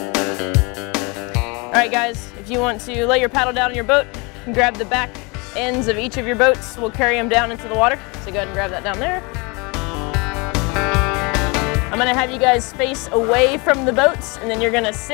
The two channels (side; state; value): right; quieter; 28.8 dB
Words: All right, guys, if you want to lay your paddle down in your boat, you can grab the back ends of each of your boats. We'll carry them down into the water. So go ahead and grab that down there. I'm going to have you guys face away from the boats, and then you're going to